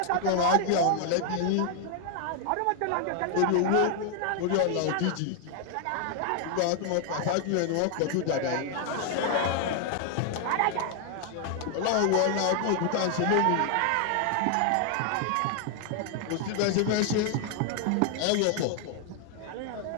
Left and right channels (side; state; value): both; different; correlation 0.00